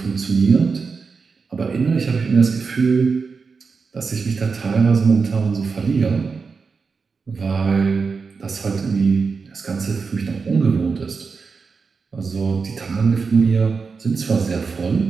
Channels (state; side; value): quieter; left; 5.0 dB